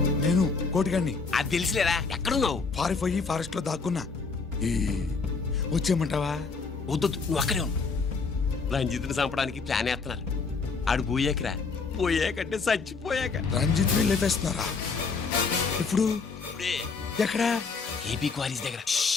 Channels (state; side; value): quieter; right; 4.7 dB